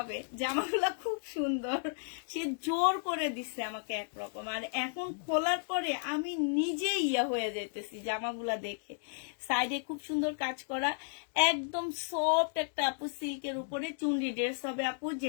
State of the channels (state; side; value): silent; right; digital silence